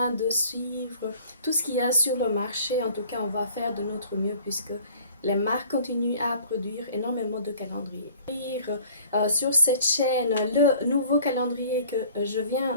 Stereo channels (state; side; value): inverted; both; correlation -0.51